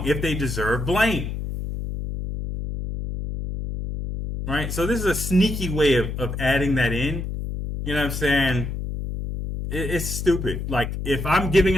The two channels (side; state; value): left; noise; hum, 5 dB below the sound